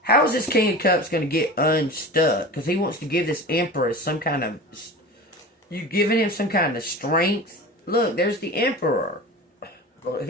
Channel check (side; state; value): both; normal; correlation 0.33